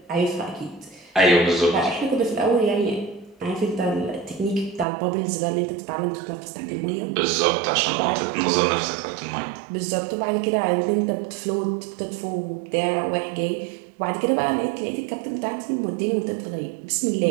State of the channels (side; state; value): left; drops out; at 4.9 s